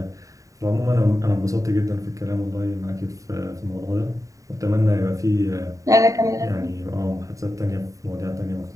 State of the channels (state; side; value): late; left; 0.16 ms